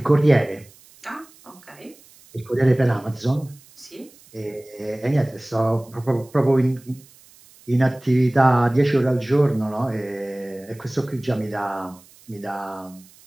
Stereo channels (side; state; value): right; noise; hiss, 26 dB below the sound